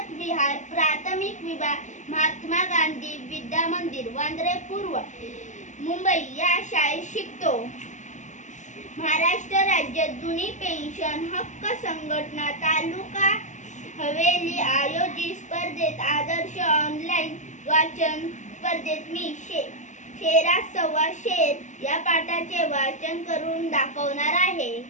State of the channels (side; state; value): right; late; 0.35 ms